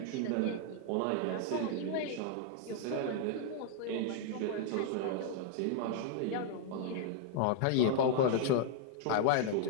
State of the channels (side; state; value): both; different; correlation -0.01